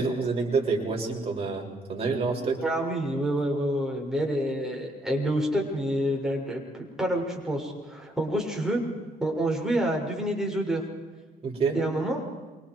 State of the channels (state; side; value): normal; both; correlation 0.70